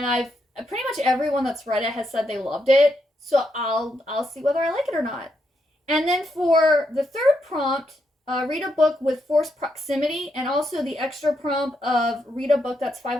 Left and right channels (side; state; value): both; normal; correlation 0.80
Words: pretty much everyone that's read it has said they loved it. So I'll see whether I like it or not. And then for the third prompt, read a book with forced proximity, and also the extra prompt of read a book that's